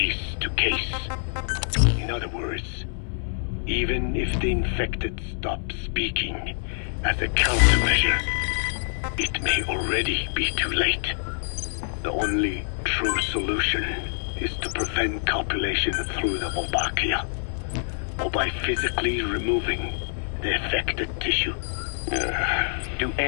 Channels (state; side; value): silent; right; 61 dB below the other